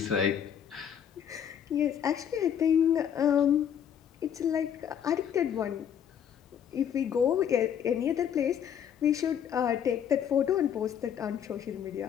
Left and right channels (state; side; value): quieter; right; 8.8 dB